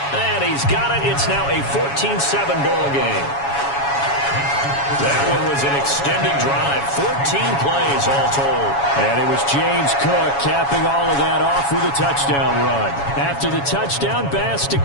And he's got it. It's now a 14-7 ball game. That one was an extended drive. 14 plays all told. And it was James Cook capping all of that off with a touchdown run. After the touchdown, Bass to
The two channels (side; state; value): right; late; 7.2 ms